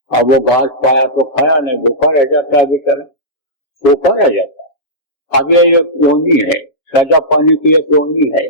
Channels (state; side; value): late; right; 7.3 ms